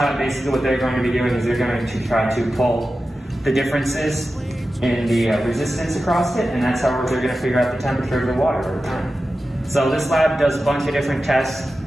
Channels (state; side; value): normal; both; correlation 0.93